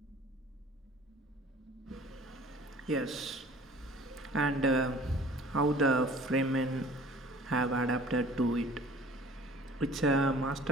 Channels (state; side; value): normal; both; correlation 0.48